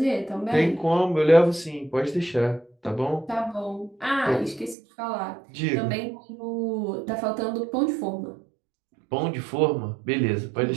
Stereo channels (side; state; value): left; drops out; at 4.8 s